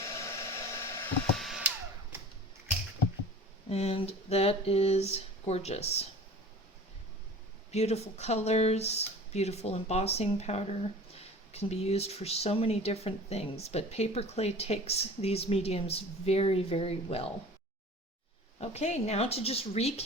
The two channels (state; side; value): normal; both; correlation 0.41